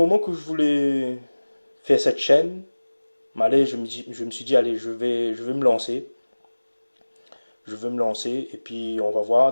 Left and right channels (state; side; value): inverted; both; correlation -1.00